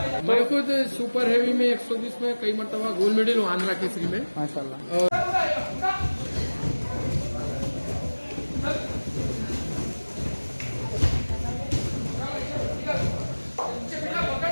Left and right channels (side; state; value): both; inverted; correlation -1.00